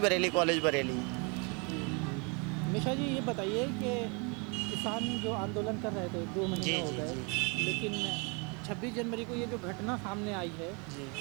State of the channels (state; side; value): quieter; left; 32.8 dB